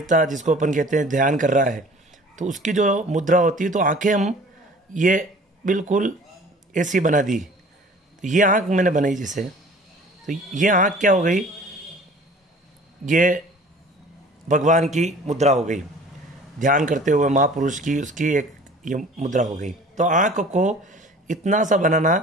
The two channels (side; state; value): both; normal; correlation 0.47